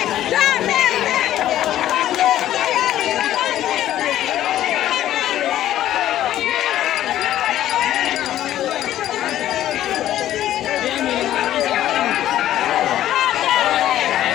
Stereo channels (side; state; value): right; quieter; 12.7 dB